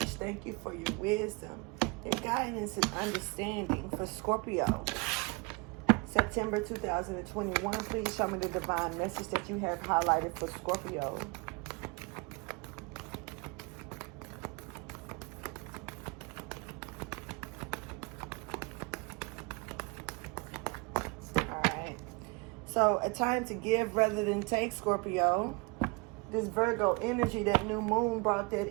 Thank you for your wisdom, your guidance, and understanding for Scorpio. September 2021, please show me the divine message that you have highlighted for Scorpio. So, a time to give rather than take, Scorpio. This Virgo energy, that new moon brought that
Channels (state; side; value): quieter; left; 28.5 dB